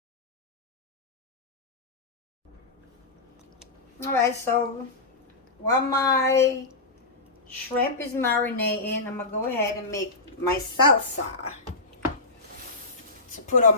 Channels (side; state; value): right; quieter; 3.2 dB